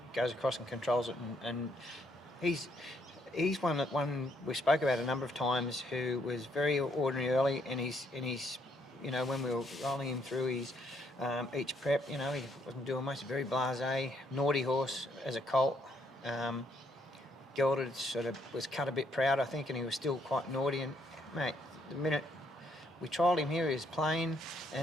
goes across and controls it, and he's one that we spoke about a number of times, who was very ordinary early, and he's when we were rolling him through his each prep, he wasn't doing much. Very blasé, naughty horse as a colt. Gelded sort of was cut a bit proud, I think, and he was still quite naughty. And mate, the minute we trialled him here, he was playing,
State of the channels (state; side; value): normal; both; correlation 0.71